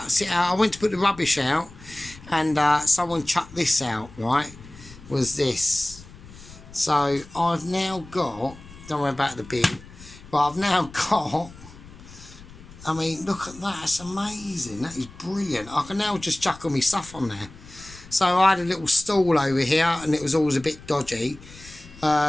it out. I went to put the rubbish out and someone chucked this out, right? Was this. So I've now got, don't worry about the bin, but I've now got, I mean, look at that, it's amazing, that is brilliant. I can now just chuck all my stuff on there. So I had a little stall over here and it was always a bit dodgy,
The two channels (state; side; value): noise; left; rumble, 19 dB below the sound